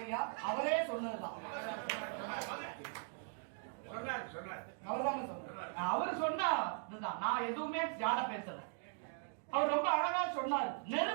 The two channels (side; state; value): left; silent; 51 dB below the other